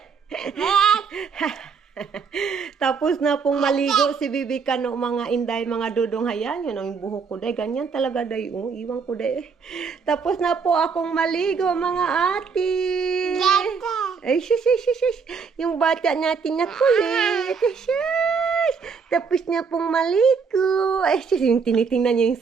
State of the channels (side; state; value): left; quieter; 5.6 dB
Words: Tapos na pong maligo si Bibi Kano, mga inday, mga dudong. Hayan, yun ang buhok ko, day. Ganyan talaga, day. Oh, iwan ko, day. Tapos na po akong maligo, mga ate. Ay, shush. Yung bata natin na kulit. Shush. Tapos na pong maligo. Ay, shush. Yung tinitingnan niya